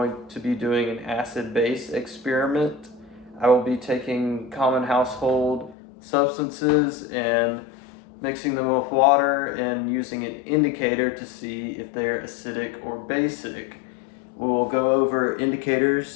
to be doing an acid-base experiment. I will be taking common household substances and mixing them with water and using an indicator to see if they're acidic or basic. We will go over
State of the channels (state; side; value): drops out; right; at 5.8 s